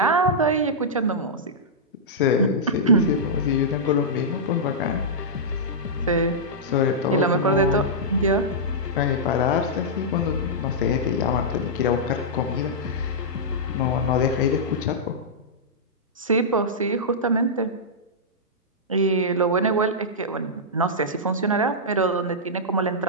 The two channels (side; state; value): both; normal; correlation -0.12